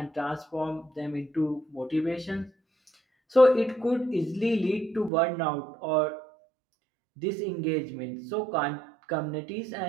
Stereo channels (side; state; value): left; drops out; at 5.1 s